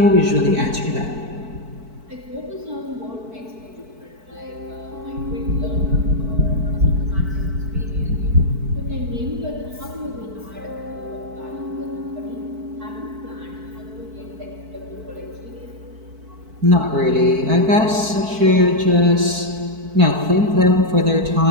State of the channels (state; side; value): late; left; 4.5 ms